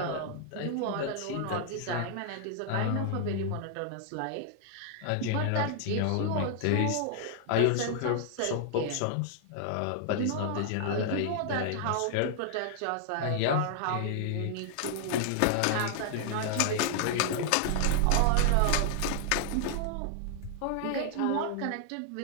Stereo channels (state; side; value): different; both; correlation 0.00